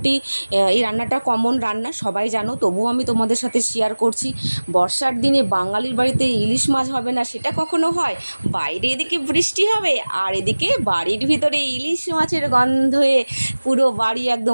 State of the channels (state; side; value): inverted; both; correlation -1.00